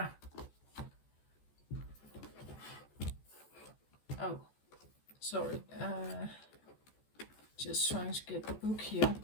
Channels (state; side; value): late; right; 14 ms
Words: Oh, sorry. Just trying to get the book here.